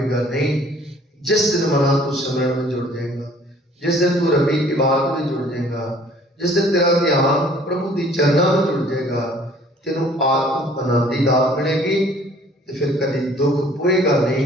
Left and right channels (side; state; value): both; normal; correlation 0.55